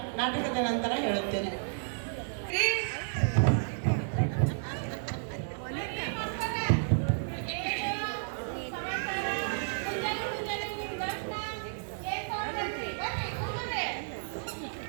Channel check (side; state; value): left; silent; 56 dB below the other